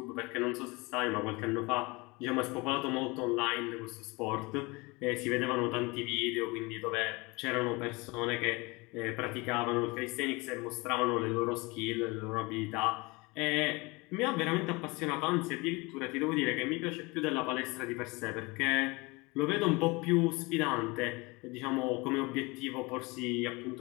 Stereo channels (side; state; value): right; quieter; 25.4 dB